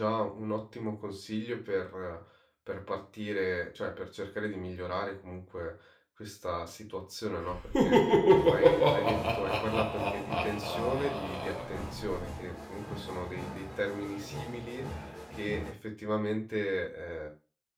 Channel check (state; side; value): identical; both; correlation 1.00